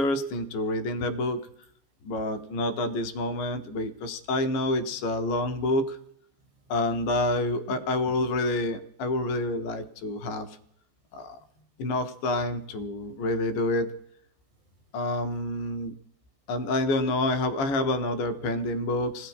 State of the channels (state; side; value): late; right; 15 ms